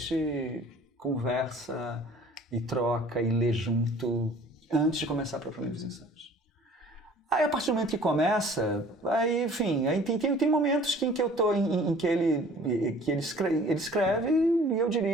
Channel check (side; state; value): both; normal; correlation 0.50